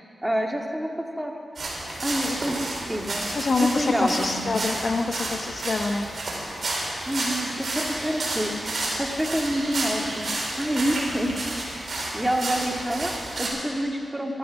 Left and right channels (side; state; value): both; normal; correlation 0.92